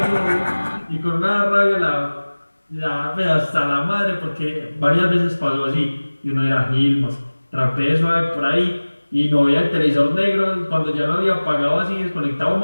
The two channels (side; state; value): both; inverted; correlation -1.00